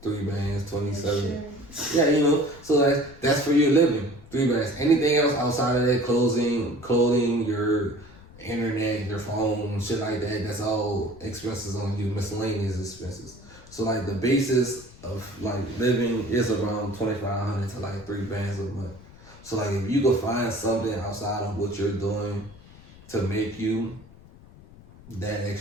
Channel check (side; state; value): left; noise; rumble, 21 dB below the sound